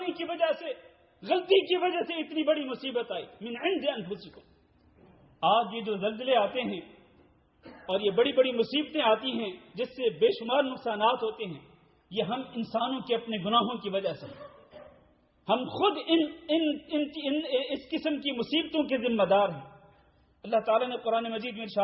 کی وجہ سے، غلطی کی وجہ سے اتنی بڑی مصیبت آئی. من عند انفسکم. آج یہ جو زلزلے آتے ہیں اور یہ بڑی بڑی مصیبتیں آتی ہیں جس سے بے شمار نقصانات ہوتے ہیں، یہ ہم انسانوں کے اپنے گناہوں کی وجہ سے، ہم خود اس قسم کی مصیبتوں کے ذمہ دار ہیں. اللہ تعالیٰ نے قرآن مجید میں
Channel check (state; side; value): identical; both; correlation 1.00